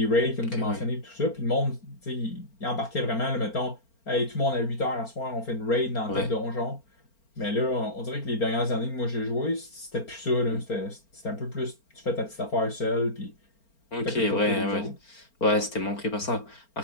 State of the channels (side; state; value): right; late; 4.4 ms